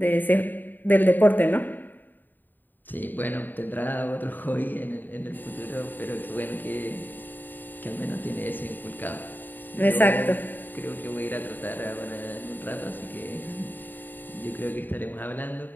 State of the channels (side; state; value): right; late; 0.090 ms